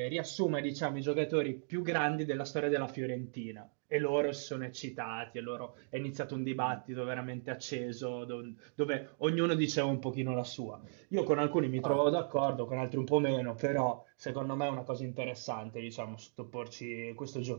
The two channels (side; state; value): left; silent; digital silence